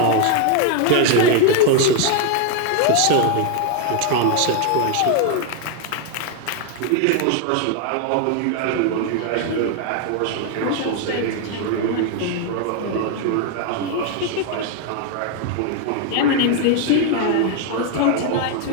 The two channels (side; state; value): both; different; correlation 0.01